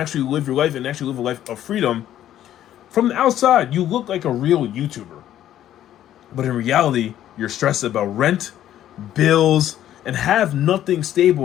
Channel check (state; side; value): quieter; right; 11.8 dB